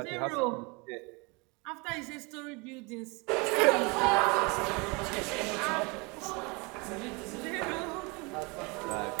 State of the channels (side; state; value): left; quieter; 28.6 dB